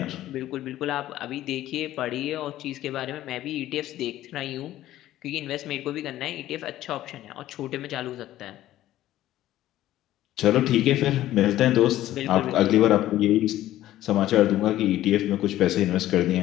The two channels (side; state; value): right; quieter; 14.0 dB